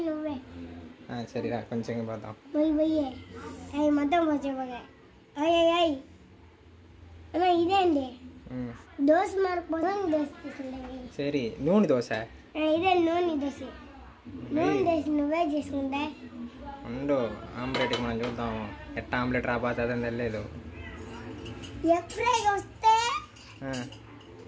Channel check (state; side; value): identical; both; correlation 1.00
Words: సరేరా కొంచెంగా పోతాం. ఇదేండి దోశ సరే నూనె దోశ. ఇదే నూనె దోశ. నూనె దోశ నువ్వే చేసుకుంటా ఉండు. ఆమ్లెట్కి మనం చూద్దాం ఎట్లా ఆమ్లెట్ రాబోతుందని తెలియదు. ఎగ్ ఫ్రై వస్తే